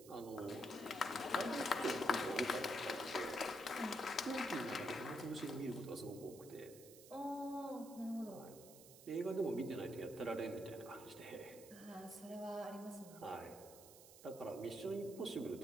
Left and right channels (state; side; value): noise; right; hiss, 17 dB below the sound